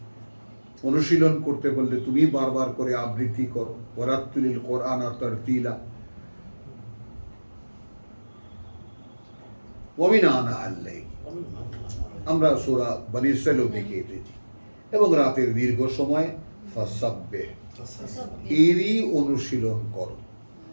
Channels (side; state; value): both; inverted; correlation -1.00